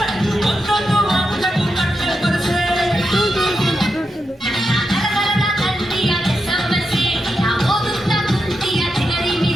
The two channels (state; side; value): normal; both; correlation 0.87